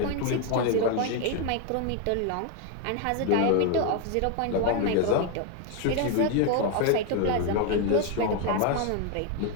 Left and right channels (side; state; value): both; different; correlation 0.01